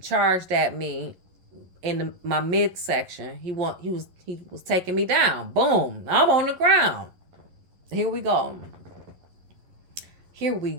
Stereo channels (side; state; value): left; late; 11 ms